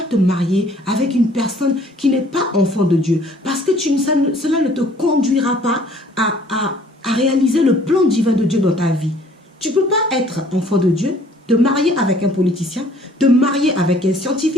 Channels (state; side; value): normal; both; correlation 0.57